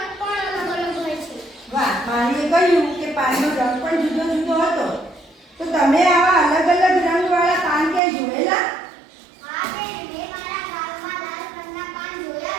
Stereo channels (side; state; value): left; drops out; at 8.0 s